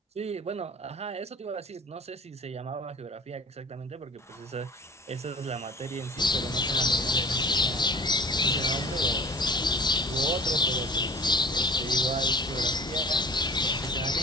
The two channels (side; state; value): both; normal; correlation 0.43